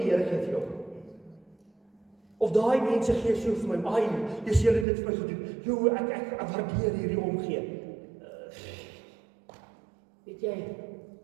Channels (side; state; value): left; drops out; at 4.9 s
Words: die Here gee vir jou. Of daai mense gee so vir my, dis julle dit vir my gedoen. Ek waardeer hierdie omgee. Weet jy,